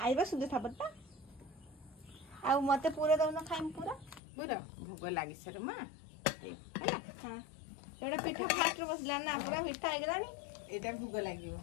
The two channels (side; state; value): right; drops out; at 4.2 s